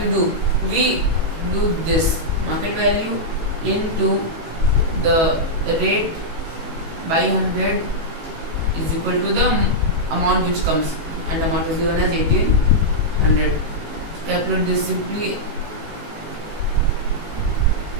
do? We do this market value into the rate by 100 is equal to the amount which comes, and amount is given as 1800. Calculate this simply.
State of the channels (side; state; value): left; late; 18 ms